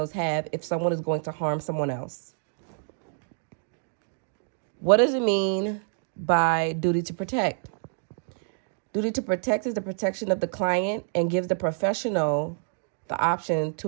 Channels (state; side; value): silent; left; digital silence